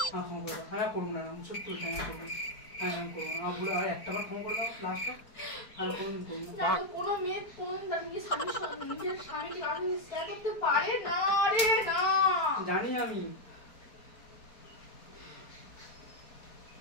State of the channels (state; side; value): late; right; 4.5 ms